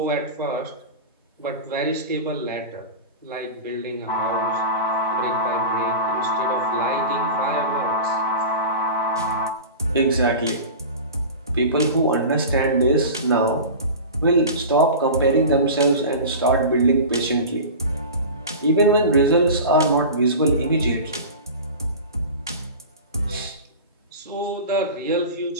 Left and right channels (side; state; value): both; inverted; correlation -0.31